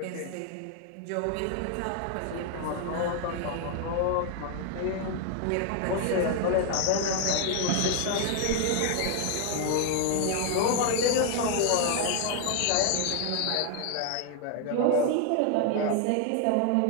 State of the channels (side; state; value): both; different; correlation 0.00